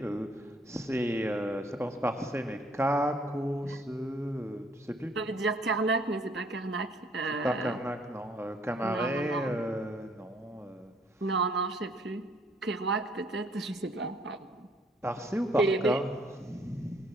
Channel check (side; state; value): both; normal; correlation 0.62